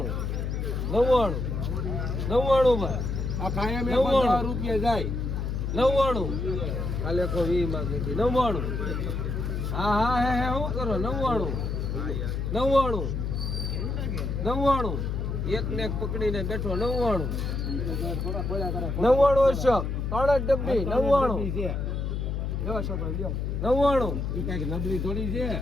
99 ભાઈ આ કાયમ 50 રૂપિયા જાય 99 કાલે કો 20 માંગે 99 હા હે હું કરો 99 એક ને એક પકડીને બેઠો 99 છે 3 ડબ્બી 99 લ્યો છોકરો લ્યો 99 ઈ કઈક નબળી થોડી છે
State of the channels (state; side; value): noise; left; hum, 2 dB below the sound